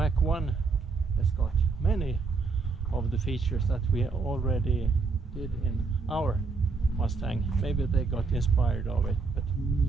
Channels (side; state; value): left; quieter; 4.5 dB